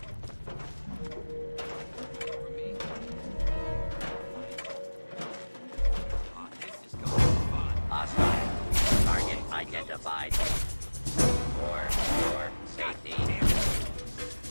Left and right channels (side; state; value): both; inverted; correlation -1.00